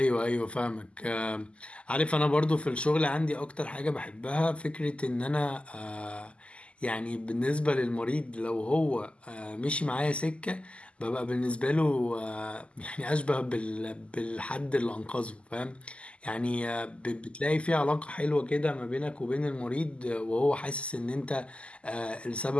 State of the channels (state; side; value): late; right; 0.055 ms